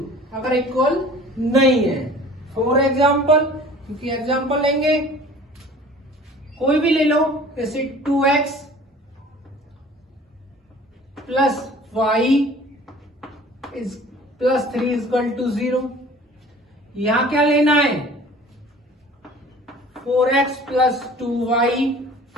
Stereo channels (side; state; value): both; normal; correlation 0.46